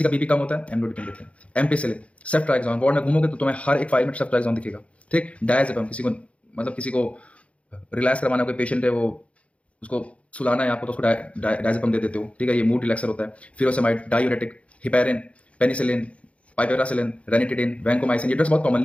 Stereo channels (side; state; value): right; late; 0.063 ms